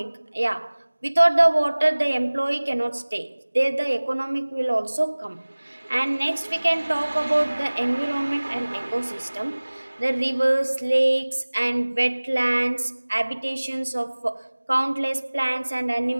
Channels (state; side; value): inverted; both; correlation -1.00